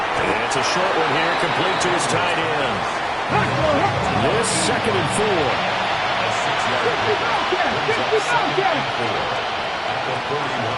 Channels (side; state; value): both; identical; correlation 1.00